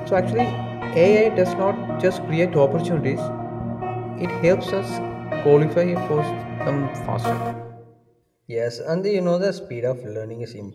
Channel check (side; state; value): both; identical; correlation 1.00